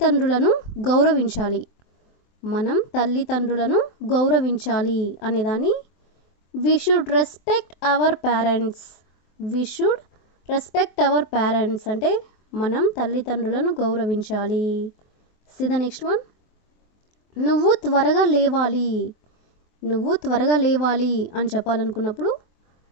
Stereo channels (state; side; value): late; right; 23 ms